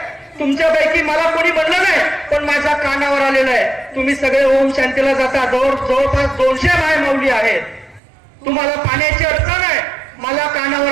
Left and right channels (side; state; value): left; drops out; at 8.0 s